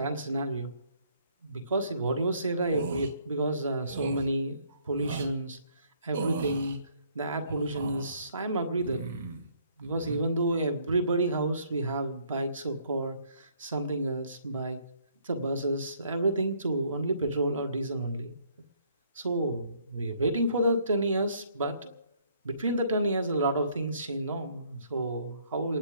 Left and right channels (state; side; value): inverted; both; correlation -0.65